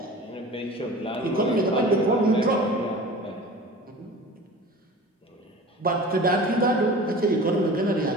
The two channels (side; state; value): both; normal; correlation 0.39